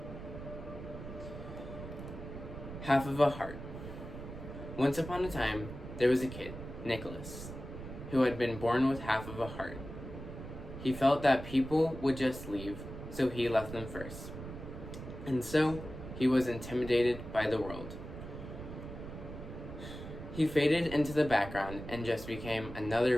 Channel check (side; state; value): right; noise; rumble, 10 dB below the sound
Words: Half of a heart. Once upon a time, there was a kid, Nicholas, who had been born with half of a heart. He felt that people would just leave, so he left them first. And so, he was intimidated by the world. He faded into the background and just became